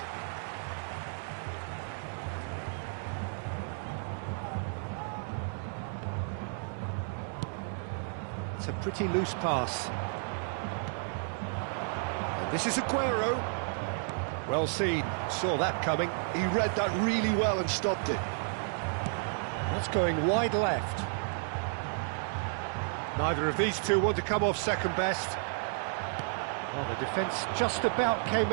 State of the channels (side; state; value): left; silent; 56 dB below the other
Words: It's a pretty loose pass. And this is Aguero. Well seen, saw that coming. He read that really well and stopped it. That's going wide left. Neither of these two want to come off second best. Well, the defence just about came